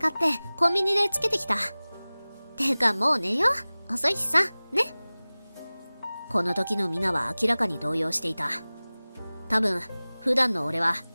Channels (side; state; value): both; inverted; correlation -0.99